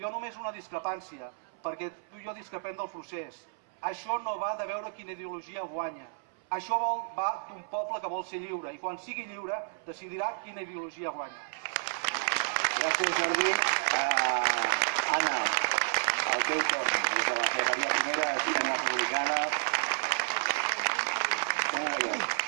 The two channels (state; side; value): silent; left; 57 dB below the other